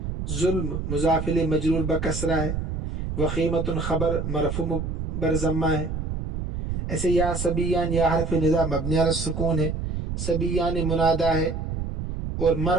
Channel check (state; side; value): noise; right; rumble, 4 dB below the sound